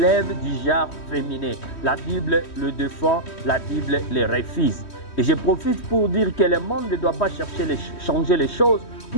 du genre féminin. La Bible le défend, la Bible le refuse. Et je profite pour dire que le monde ne doit pas chercher changer les choses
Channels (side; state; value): right; late; 3.1 ms